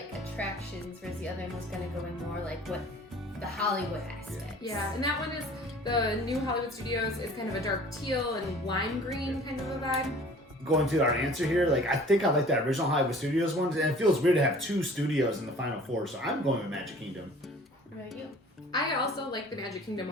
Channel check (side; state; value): both; normal; correlation 0.48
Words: attractions, whereas the other one was going to go in more like what the Hollywood aspect. Yeah, and that one is the new Hollywood Studios is kind of a dark teal and lime green kind of a vibe. Going to our answer here, like I think I like that original Hollywood Studios one, and it feels weird to have two studios in the final four. So I'm going with Magic Kingdom. What about you? I also like the Magic Kingdom